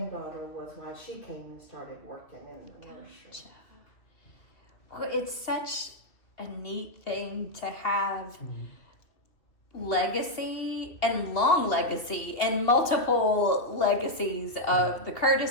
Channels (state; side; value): late; right; 2.5 ms